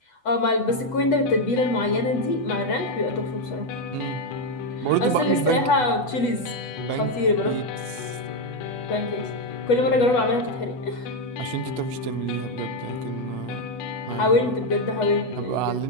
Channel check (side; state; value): right; late; 8.1 ms